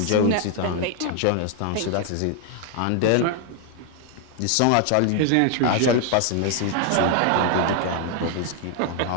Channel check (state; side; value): different; both; correlation 0.00